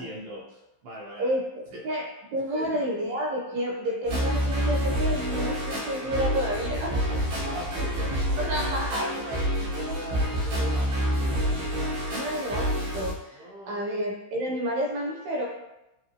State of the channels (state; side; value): late; left; 15 ms